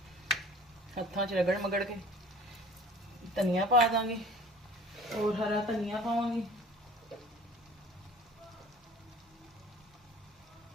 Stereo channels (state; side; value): normal; both; correlation 0.47